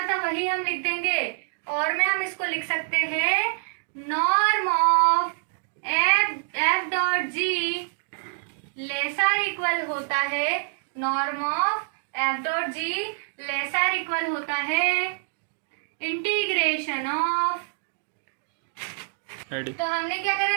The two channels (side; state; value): left; silent; digital silence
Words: था वही हम लिख देंगे, और में हम इसको लिख सकते हैं norm of f dot g lesser equal होता है, norm of f dot g lesser equal होता है इंटीग्रेशन ऑफ। तो हमने क्या